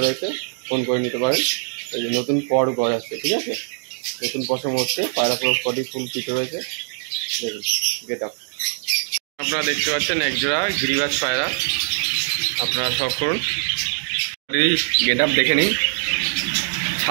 রয়েছে, ফোন করে নিতে পারেন। এই যে নতুন পর গড় আছে, ঠিক আছে? নতুন পশম হচ্ছে। পায়রা পুরো বডি ফুল ফিট রয়েছে। দেখুন গেট আপ। আপনারা দেখতে পাচ্ছেন একজোড়া গিরিবাজ পায়রা। আপনারা শখ করুন। গেট আপ দেখে নিন।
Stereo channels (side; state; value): left; silent; 64 dB below the other